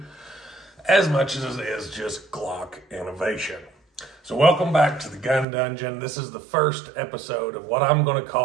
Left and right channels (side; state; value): left; drops out; at 5.5 s